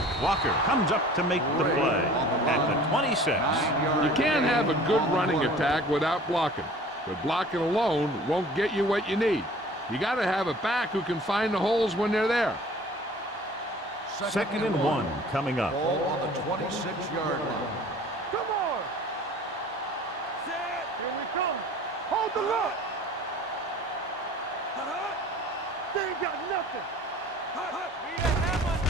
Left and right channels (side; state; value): both; normal; correlation 0.47